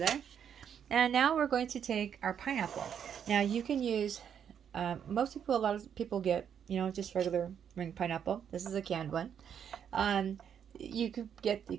And now we're going to take our pineapple. Now you can use a lot of people get just regular ring pineapple. This is a canned one. You could get the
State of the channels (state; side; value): quieter; left; 8.3 dB